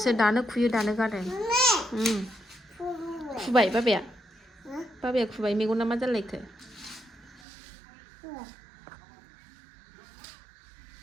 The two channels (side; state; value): left; drops out; at 7.5 s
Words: दानो खुयो दानो गानो खुबाय बाबाया खुबाय मेगना मा जालायखो